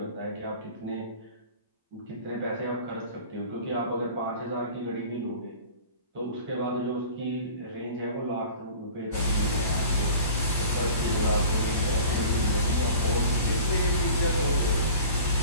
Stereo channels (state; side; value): inverted; both; correlation -0.43